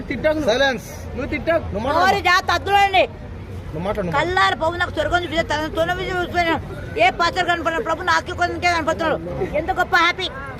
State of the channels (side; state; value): both; identical; correlation 1.00